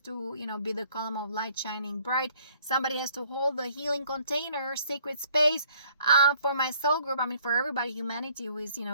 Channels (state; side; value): inverted; both; correlation -0.61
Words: you know, be the column of light shining bright. Somebody has to hold the healing container, sacred space, for my soul group. I mean, for everybody, humanity who is, you